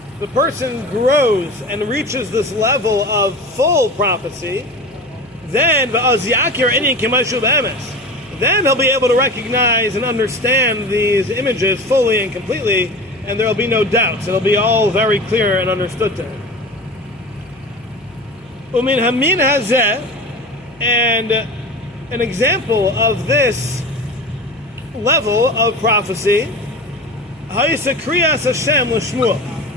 the person grows and reaches this level of full prophecy, then he'll be able to recognize and understand these images fully and completely, and there will be no doubts. It'll be all very clear and understood to him. Umin hamin hazeh, and an example of this level of prophecy, Ha'isa Kriyas Hashem l'Shmuel,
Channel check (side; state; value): left; noise; hum, 28 dB below the sound